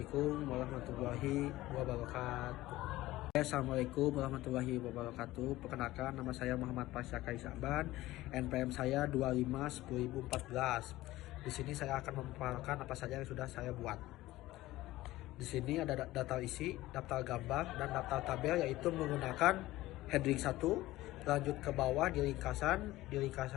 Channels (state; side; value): quieter; right; 17.1 dB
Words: warahmatullahi wabarakatuh. Assalamualaikum warahmatullahi wabarakatuh. Perkenalkan, nama saya Muhammad Pasyakai Sa'ban. NPM saya 25/10.014. Di sini saya akan memaparkan apa saja yang sudah saya buat. Di sini ada daftar isi, daftar gambar, dan daftar tabel, yaitu menggunakan heading 1. Lanjut ke bawah di